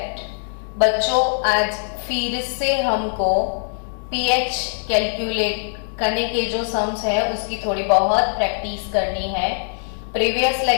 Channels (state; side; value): silent; right; digital silence